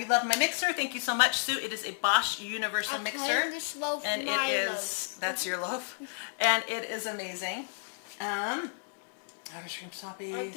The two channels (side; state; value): right; silent; digital silence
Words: love my mixer. Thank you so much, Sue. It is a Bosch Universal Mixer. And it is, that's your loaf. And it is amazing. Outer Stream Sloppy,